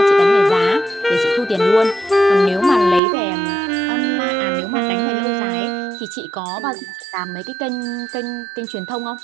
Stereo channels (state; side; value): drops out; left; at 3.0 s